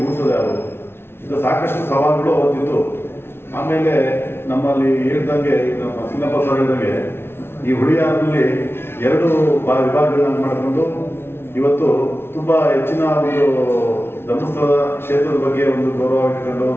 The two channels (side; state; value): right; late; 0.12 ms